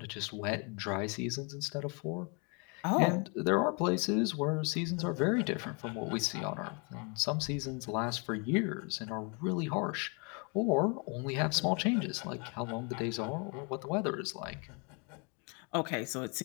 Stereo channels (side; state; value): right; quieter; 34.5 dB